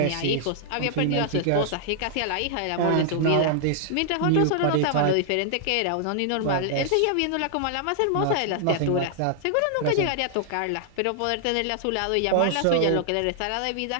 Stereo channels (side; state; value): both; different; correlation -0.01